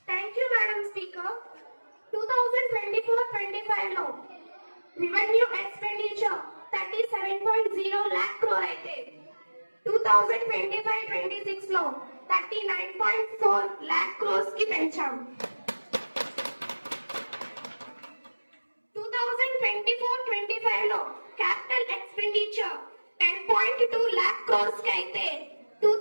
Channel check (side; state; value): both; inverted; correlation -1.00